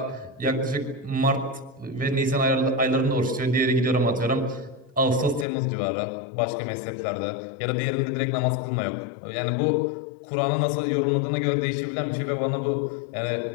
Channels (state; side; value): drops out; right; at 5.5 s